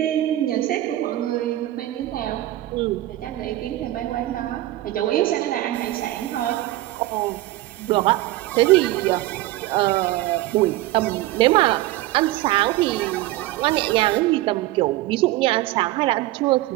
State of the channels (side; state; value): left; quieter; 16.6 dB